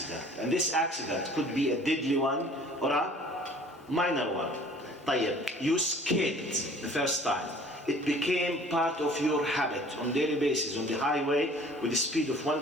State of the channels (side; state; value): both; normal; correlation 0.51